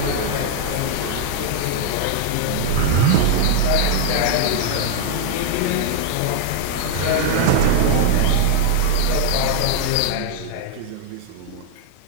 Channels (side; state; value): both; different; correlation 0.00